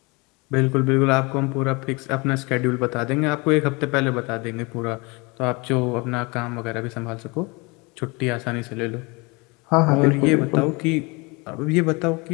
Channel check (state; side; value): quieter; right; 27.1 dB